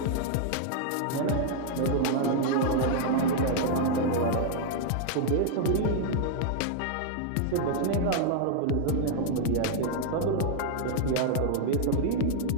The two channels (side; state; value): both; different; correlation 0.00